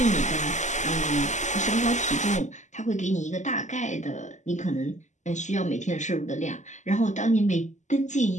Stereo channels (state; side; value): late; right; 0.34 ms